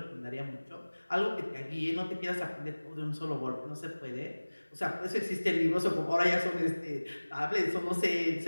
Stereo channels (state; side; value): inverted; both; correlation -1.00